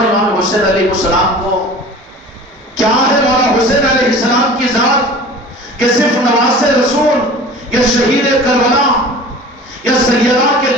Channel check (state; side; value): normal; both; correlation 0.41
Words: حسین علیہ السلام کو؟ کیا ہے مولا حسین علیہ السلام کی ذات کہ صرف نواز رسول یا شہید کربلا یا سیدہ کے